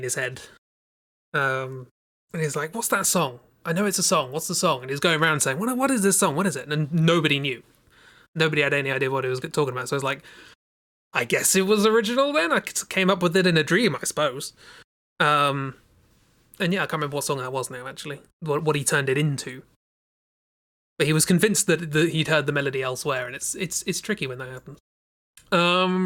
his head. And he's like, what's that song? I know it's a song. What's the song? And he's going around saying, what is this song? What is it? And nobody knew. Nobody had any idea what he was talking about. So I was like, I guess it was original then. I came up with it in a dream, I suppose. And yeah, I can't remember what song that was now, actually. What he turned it into. But he was convinced that he'd heard the melody elsewhere, and it's tricky when that happens.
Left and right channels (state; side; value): identical; both; correlation 1.00